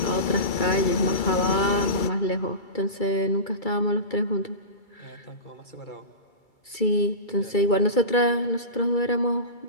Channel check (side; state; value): right; late; 2.3 ms